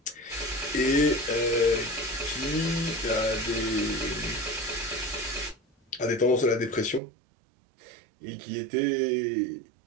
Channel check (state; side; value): drops out; left; at 7.0 s